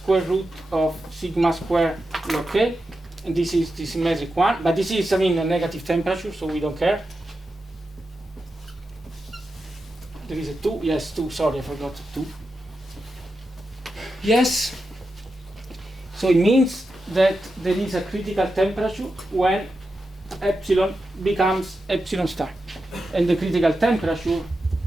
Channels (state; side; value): normal; both; correlation 0.89